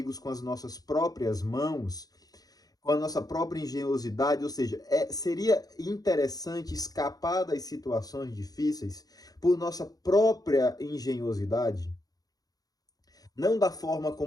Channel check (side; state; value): right; late; 0.18 ms